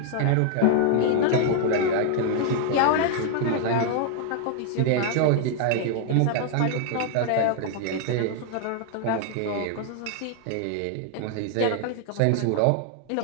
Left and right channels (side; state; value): both; different; correlation 0.00